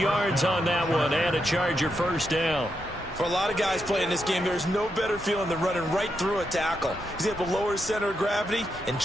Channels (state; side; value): normal; both; correlation 0.83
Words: on that one and a Charger first down. For a lot of guys playing this game, there's no better feeling than running right through a tackle. He's able to lower his center of gravity and